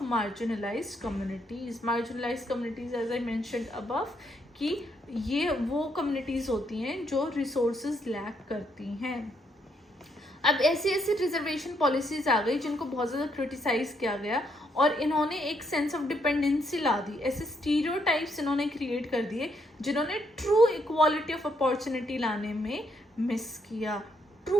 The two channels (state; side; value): normal; both; correlation 0.74